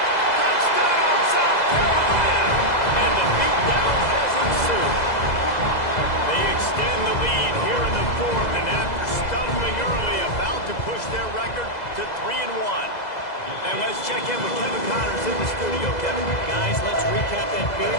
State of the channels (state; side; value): late; right; 2.0 ms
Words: Touchdown, South Carolina! And the beatdown has ensued. They extend the lead here in the 4th, and after stumbling early, about to push their record to 3-1. And let's check in with Kevin Connors in the studio. Kevin? Guys, let's recap that Big